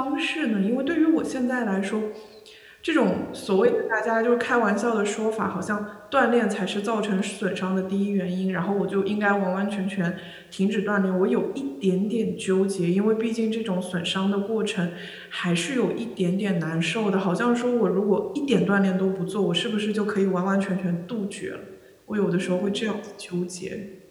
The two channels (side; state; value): both; identical; correlation 1.00